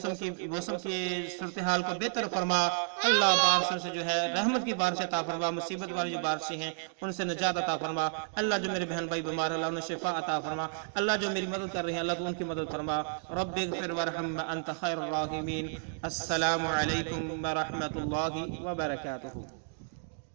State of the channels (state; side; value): silent; left; digital silence